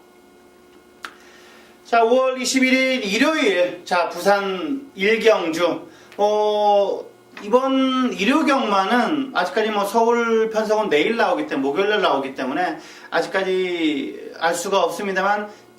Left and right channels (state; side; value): identical; both; correlation 1.00